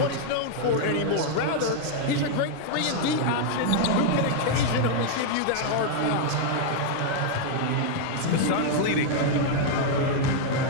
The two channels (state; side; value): different; both; correlation 0.00